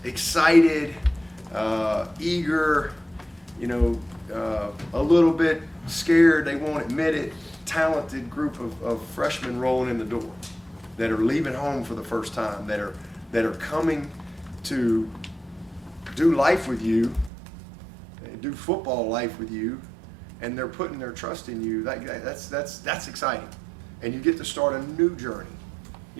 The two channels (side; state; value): left; drops out; at 17.3 s